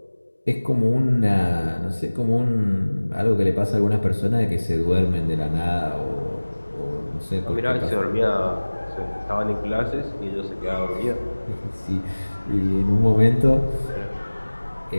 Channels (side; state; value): both; inverted; correlation -1.00